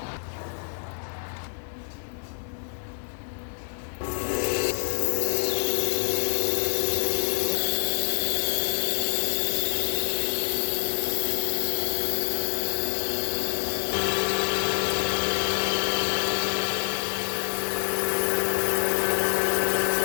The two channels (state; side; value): silent; right; digital silence